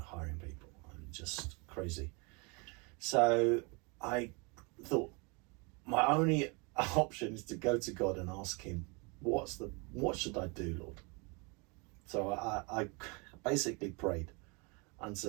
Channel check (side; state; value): left; quieter; 30.9 dB